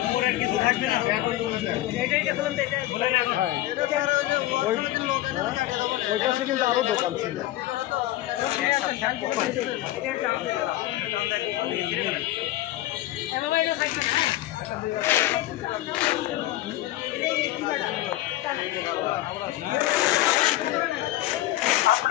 কিছু থাকবে না এটা খুলেন তো এটা ওই পাশে কিন্তু আরো দোকান ছিল।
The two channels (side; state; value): right; quieter; 15.8 dB